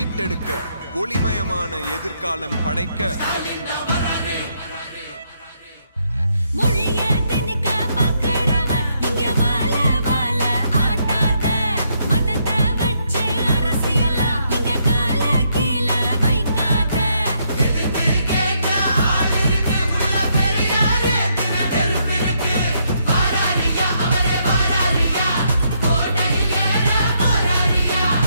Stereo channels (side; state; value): both; inverted; correlation -0.75